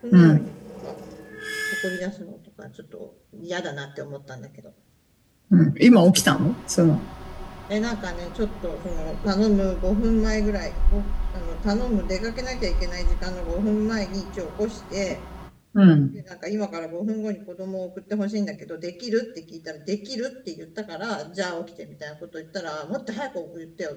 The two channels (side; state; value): both; identical; correlation 1.00